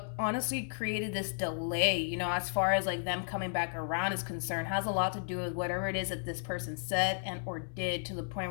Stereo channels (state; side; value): silent; right; 55 dB below the other